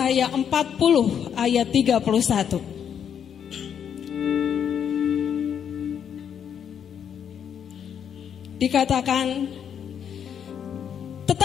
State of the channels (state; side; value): quieter; right; 8.3 dB